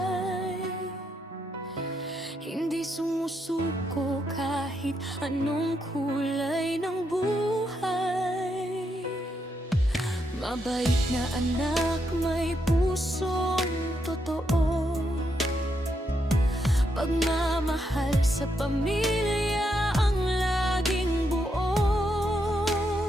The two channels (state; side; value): normal; both; correlation 0.80